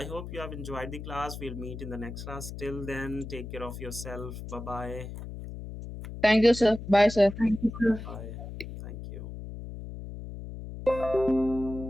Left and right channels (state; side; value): noise; left; hum, 10 dB below the sound